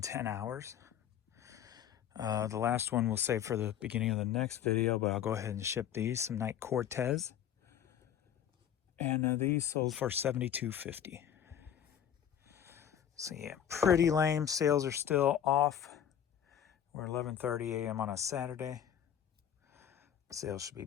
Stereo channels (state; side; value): quieter; right; 9.6 dB